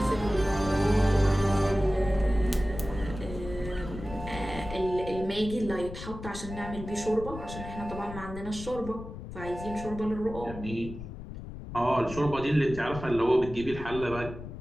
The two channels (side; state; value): left; noise; rumble, 11 dB below the sound